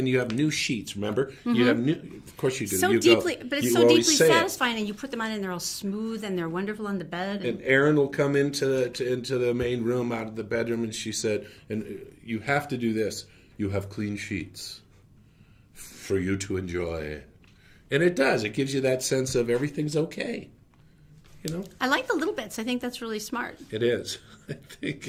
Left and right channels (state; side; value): identical; both; correlation 1.00